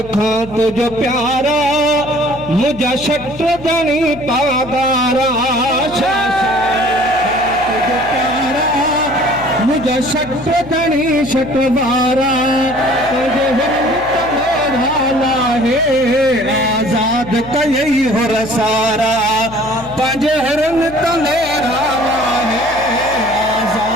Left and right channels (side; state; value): left; noise; hum, 17 dB below the sound